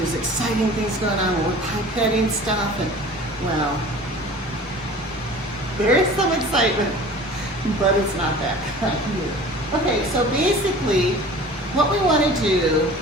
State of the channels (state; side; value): normal; both; correlation 0.42